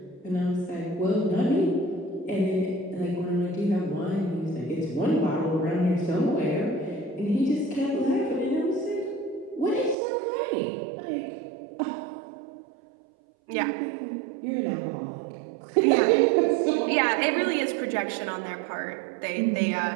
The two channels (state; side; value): drops out; left; at 10.0 s